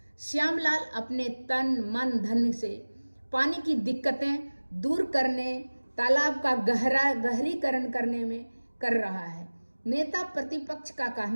श्यामलाल अपने तन मन धन से पानी की दिक्कतें दूर करने, तालाब का गहरीकरण करने में कर रहा है। नेता प्रतिपक्ष का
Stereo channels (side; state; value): both; inverted; correlation -1.00